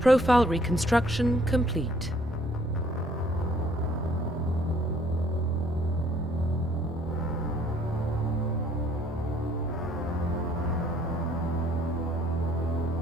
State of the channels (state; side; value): normal; both; correlation 0.61